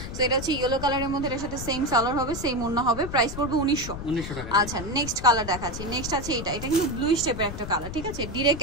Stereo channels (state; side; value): noise; left; rumble, 8 dB below the sound